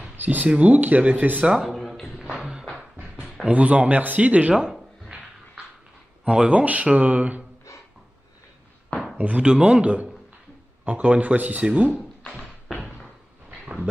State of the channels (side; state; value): both; normal; correlation 0.97